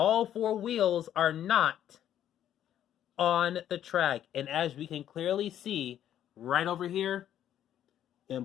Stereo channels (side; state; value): right; quieter; 10.9 dB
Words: 4 wheels are not on the track. And as we can clearly see right over here,